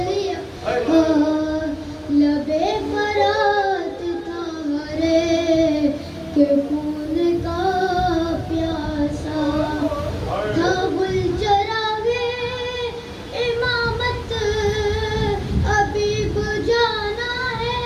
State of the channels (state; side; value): identical; both; correlation 1.00